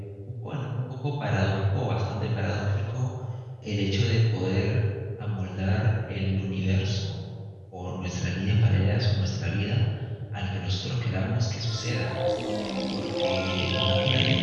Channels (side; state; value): both; identical; correlation 1.00